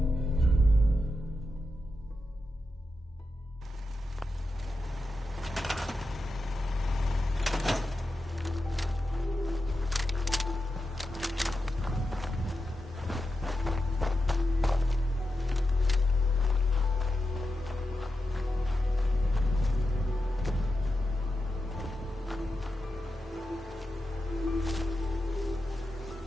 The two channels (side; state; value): both; normal; correlation 0.89